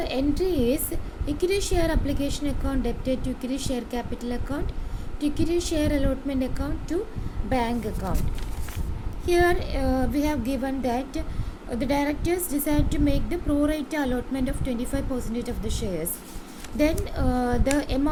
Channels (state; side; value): identical; both; correlation 1.00